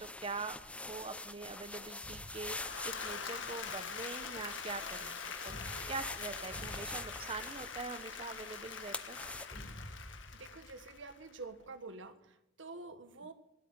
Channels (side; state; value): both; normal; correlation 0.02